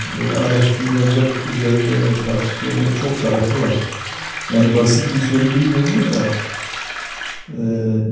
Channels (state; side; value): identical; both; correlation 1.00